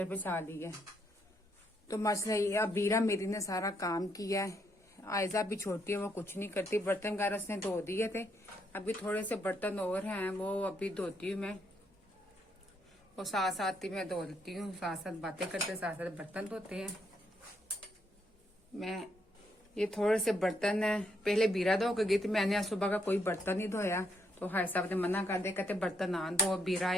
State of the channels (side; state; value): both; normal; correlation 0.75